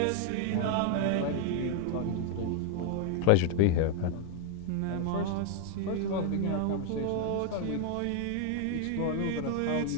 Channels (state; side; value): different; both; correlation 0.00